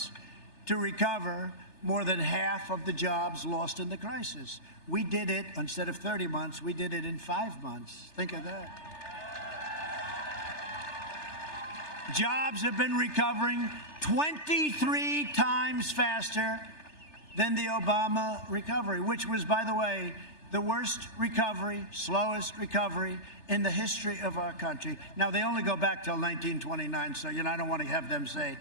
to recover more than half of the jobs lost in the crisis. We did it, instead of 30 months, we did it in 5 months. Think of that. Jobs have been recovering 23 times faster than the Obama recovery, which was, by the way, the worst recovery, slowest recovery in the history of our country. Now, they only go back till 1929, so, you know, I don't want to have them say,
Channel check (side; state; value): right; late; 3.3 ms